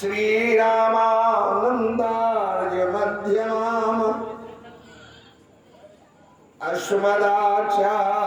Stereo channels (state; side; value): identical; both; correlation 1.00